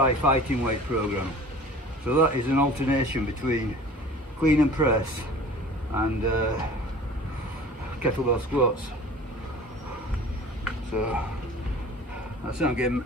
fighting weight program. So that is an alternation between clean and press and kettlebell squats. So that's what I'm getting,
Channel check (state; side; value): normal; both; correlation 0.44